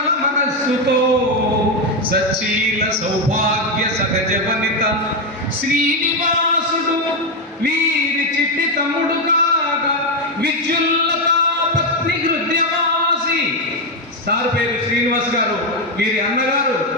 మనస్సుతో సచీల సౌభాగ్య సహజ వనిత శ్రీనివాసుడు వీరి చిట్టి తమ్ముడు కాగా విద్యుల్లత పత్ని హృదయవాసి. సార్ పేరు శ్రీనివాస్ గారు, వీరి అన్నగారు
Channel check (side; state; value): both; normal; correlation 0.07